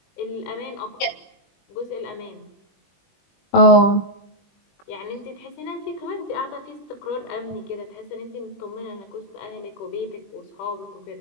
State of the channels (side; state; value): right; late; 21 ms